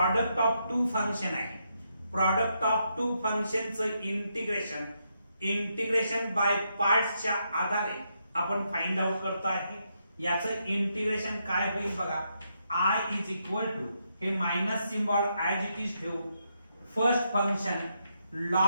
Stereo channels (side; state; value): both; inverted; correlation -0.80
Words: ऑफ टू फंक्शन आहे. प्रॉडक्ट ऑफ टू फंक्शनचं इंटिग्रेशन बाय पार्ट्सच्या आधारे आपण फाइंड आउट करतो आहे. याचं इंटिग्रेशन काय होईल बघा. आय इज इक्वल टू हे minus symbol as it is ठेवू. First function